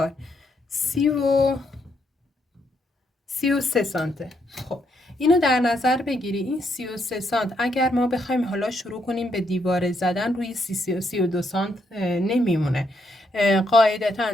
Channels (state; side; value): normal; both; correlation 0.76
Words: 33 سانته. خب اینو در نظر بگیری. این 33 سانت اگر ما بخوایم حالا شروع کنیم به دیواره زدن، روی 32 سانت نمیمونه.